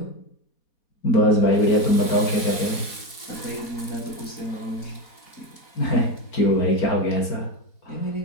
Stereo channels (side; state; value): right; late; 4.0 ms